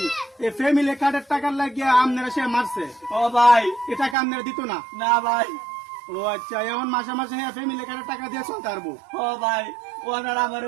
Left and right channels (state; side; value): drops out; left; at 4.2 s